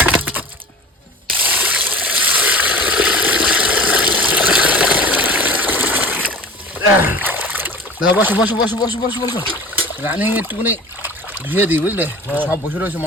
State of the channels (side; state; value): both; normal; correlation 0.40